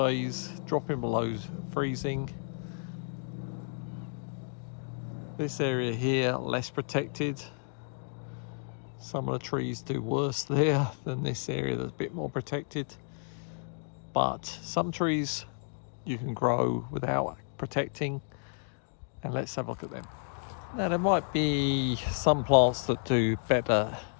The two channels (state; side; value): silent; right; 57 dB below the other